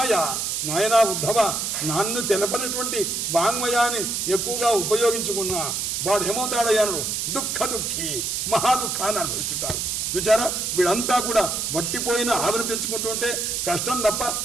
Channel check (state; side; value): noise; right; hiss, 1 dB below the sound